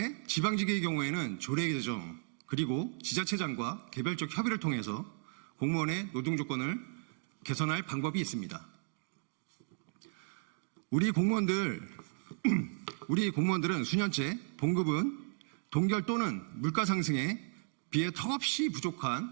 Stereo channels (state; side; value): silent; left; 55 dB below the other